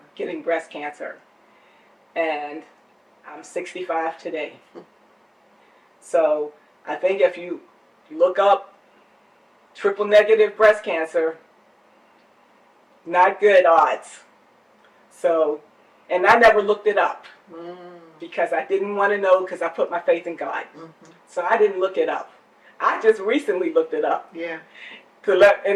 getting breast cancer, and I'm 65 today. So I think if you look up triple negative breast cancer, not good odds. So, and I never looked it up because I didn't want to know, because I put my faith in God. So I didn't look it up. I just recently looked it up. Yeah. And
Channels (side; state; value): both; identical; correlation 1.00